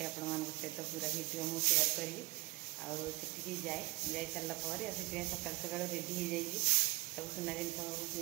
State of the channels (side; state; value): left; quieter; 21.9 dB